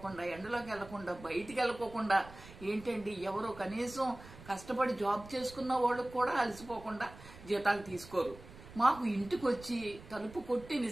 ఎండలోకి వెళ్లకుండా, బయటికి వెళ్ళకోకుండా, ఏంటండి ఎవరో కనీసం కష్టపడి జాబ్ చేసుకున్న వాళ్ళకు కూడా అలసిపోకుండా జీతాలు తీసుకోరు. మాకు ఇంటికి వచ్చి తలుపు కొట్టి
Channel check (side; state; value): right; noise; rumble, 18 dB below the sound